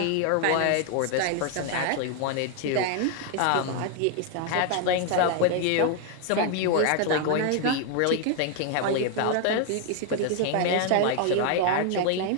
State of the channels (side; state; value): both; different; correlation 0.00